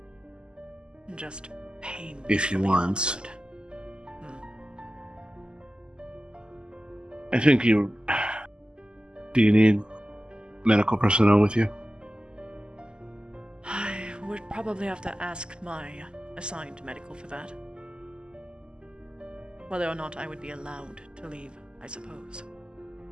Just pain. If you want. I think you... Do you need medical personnel with you? I would probably have to ask my assigned medical for that. Whether or not I would be allowed to leave, I suppose.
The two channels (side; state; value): left; late; 0.048 ms